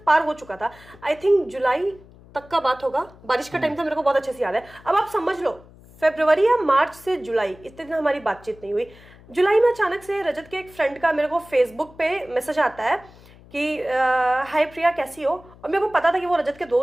पार हो चुका था, आई थिंक जुलाई तक का बात होगा, बारिश का टाइम था, मेरे को बहुत अच्छे से याद है। अब आप समझ लो फरवरी या मार्च से जुलाई, इतने दिन हमारी बातचीत नहीं हुई। जुलाई में अचानक से रजत के एक फ्रेंड का मेरे को फेसबुक पे मैसेज आता है कि हाय प्रिया कैसी हो। और मेरे को पता था कि वो रजत के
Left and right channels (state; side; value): noise; left; hum, 23 dB below the sound